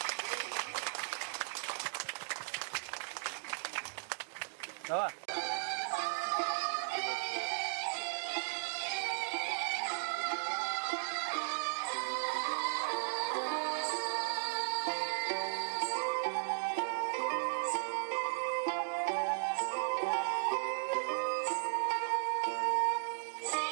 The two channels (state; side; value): silent; left; digital silence